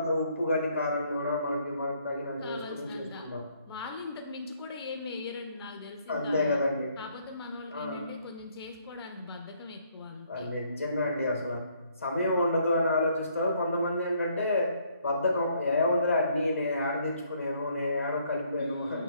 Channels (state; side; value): inverted; both; correlation -0.67